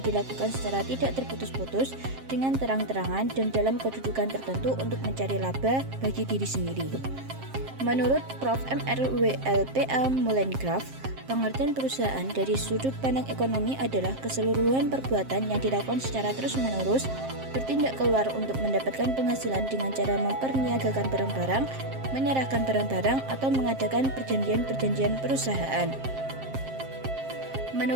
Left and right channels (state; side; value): late; left; 7.5 ms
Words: dilakukan secara tidak terputus-putus dengan terang-terangan dan dalam kedudukan tertentu untuk mencari laba bagi diri sendiri. Menurut Prof. MRWLPA Mullengraf, pengertian perusahaan dari sudut pandang ekonomi adalah keseluruhan perbuatan yang dilakukan secara terus-menerus, bertindak keluar untuk mendapatkan penghasilan dengan cara memperniagakan barang-barang, menyerahkan barang-barang, atau mengadakan perjanjian-perjanjian perusahaan.